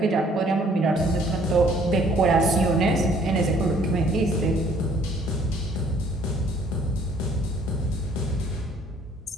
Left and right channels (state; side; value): normal; both; correlation 0.60